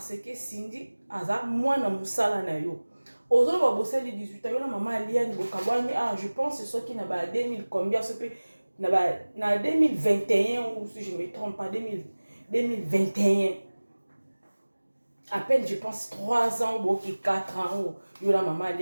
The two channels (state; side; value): inverted; both; correlation -1.00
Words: que Cindy aza mwana musala na yo ozo ba bosali 18 ans yo na maman Aliane bokabwani je pense c'est ce qui na ba 2000 combien ce peut na 2021 ou si je me trompe pas 2021 à peine je pense 3 ans ou 4 ans yo la maman